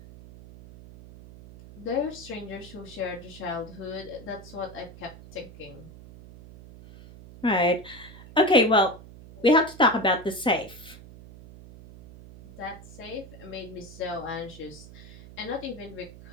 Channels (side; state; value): right; noise; hum, 17 dB below the sound